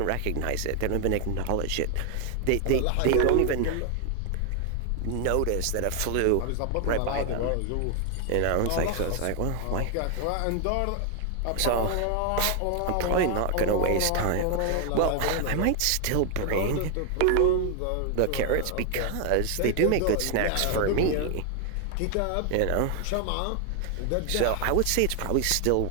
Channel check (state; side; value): different; both; correlation 0.00